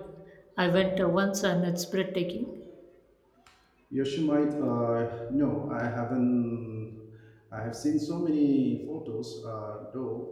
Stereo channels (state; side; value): identical; both; correlation 1.00